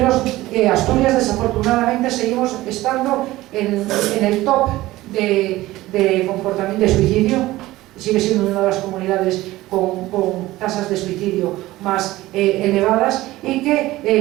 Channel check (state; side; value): quieter; left; 17.4 dB